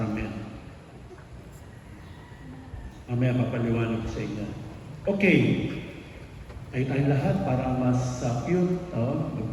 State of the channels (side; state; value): both; identical; correlation 1.00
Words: Mamaya papaliwanag ko sa inyo. Okay. Ay tayong lahat para mas cute.